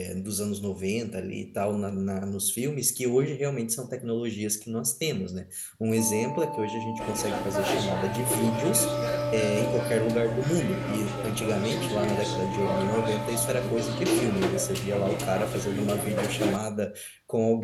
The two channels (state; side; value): identical; both; correlation 1.00